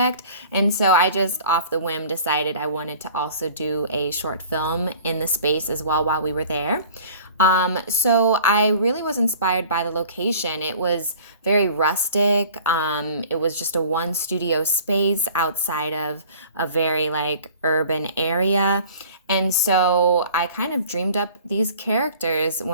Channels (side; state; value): both; inverted; correlation -0.47